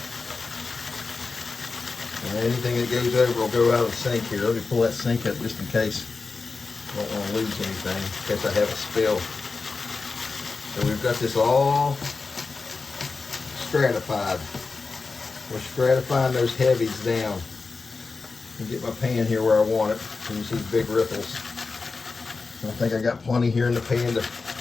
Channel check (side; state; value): right; quieter; 4.2 dB